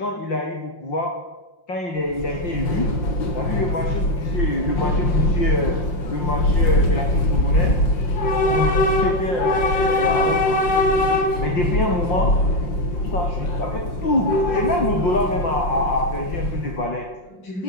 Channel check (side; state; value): right; late; 5.6 ms